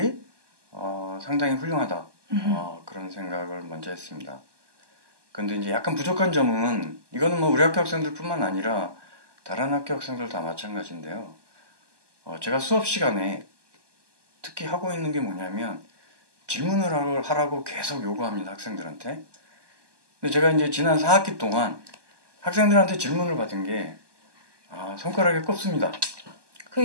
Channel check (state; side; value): late; left; 1.2 ms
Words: 상당히 훌륭하다. 그런 생각을 먼저 했습니다. 근데 이제 약간 부족한 점은 이거는 우리 학교 학생들뿐만 아니라 다른 학교 학생들 다 마찬가지인데요. 제가 수업 시간에 특히 하고 있는 게 뭐냐면 질문을 하라고 계속 요구합니다, 학생들한테. 근데 제가 이제 지난 4학기 동안 학생들한테 질문을 받은 게 손가락에 꼽습니다.